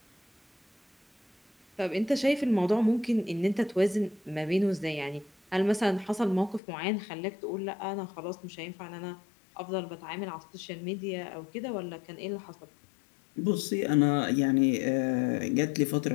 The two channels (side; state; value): right; drops out; at 6.6 s